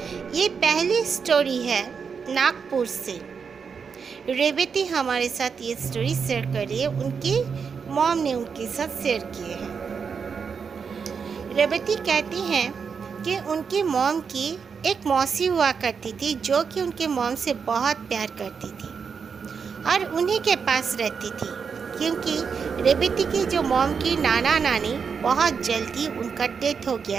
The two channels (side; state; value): left; quieter; 6.0 dB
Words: ये पहली स्टोरी है नागपुर से। रेवती हमारे साथ ये स्टोरी शेयर कर रही है, उनकी मॉम ने उनके साथ शेयर किए हैं। रेवती कहती हैं कि उनकी मॉम की एक मौसी हुआ करती थी जो कि उनके मॉम से बहुत प्यार करती थी और उन्हीं के पास रहती थी, क्योंकि रेवती की जो मॉम की नाना नानी बहुत जल्दी उनका डेथ हो